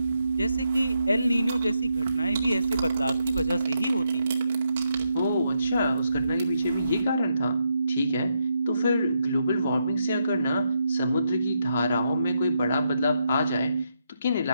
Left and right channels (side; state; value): both; inverted; correlation -0.81